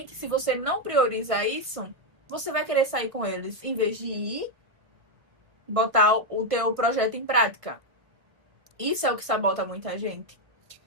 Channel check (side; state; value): left; late; 1.7 ms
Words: se você não priorizar isso, você vai querer sair com eles, em vez de ir botar o teu projeto em prática. Isso é o que sabota muita gente.